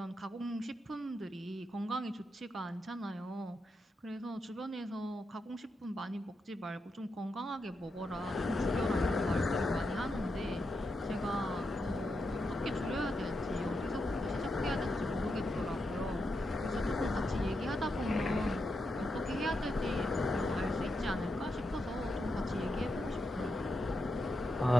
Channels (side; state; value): both; normal; correlation 0.85